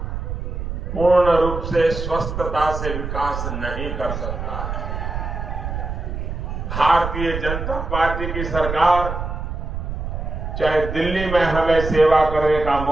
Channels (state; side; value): noise; right; rumble, 5 dB below the sound